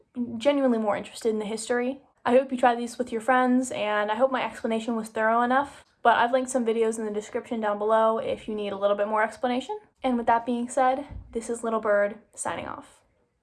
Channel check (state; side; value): identical; both; correlation 1.00